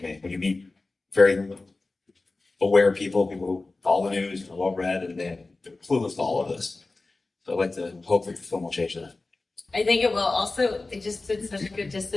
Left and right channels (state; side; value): quieter; right; 3.4 dB